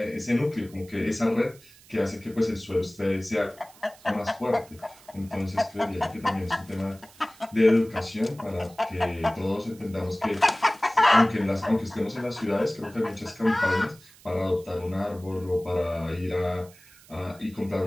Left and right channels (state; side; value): noise; right; hiss, 24 dB below the sound